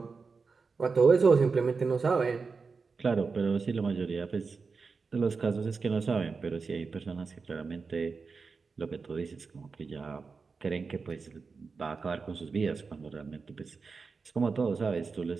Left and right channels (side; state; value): left; quieter; 4.7 dB